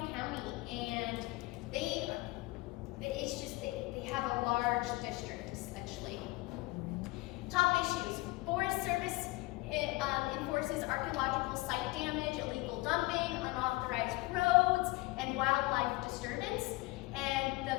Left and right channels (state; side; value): quieter; right; 21.7 dB